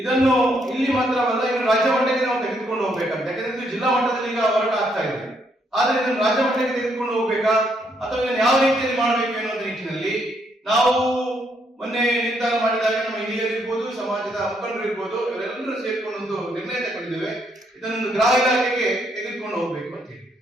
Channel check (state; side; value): normal; both; correlation 0.73